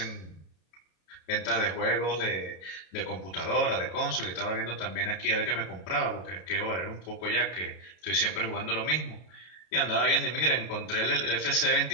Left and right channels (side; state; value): right; late; 33 ms